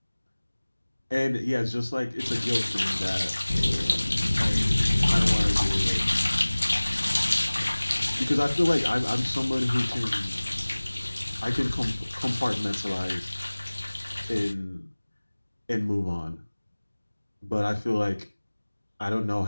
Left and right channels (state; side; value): inverted; both; correlation -1.00